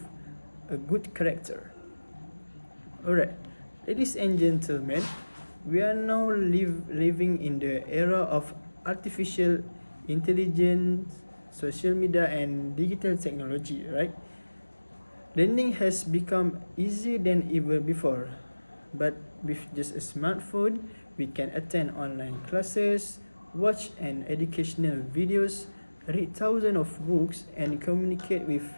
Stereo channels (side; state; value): both; inverted; correlation -1.00